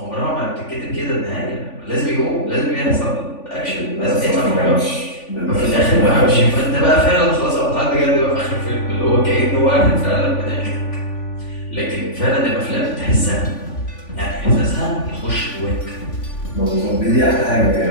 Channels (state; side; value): late; right; 3.5 ms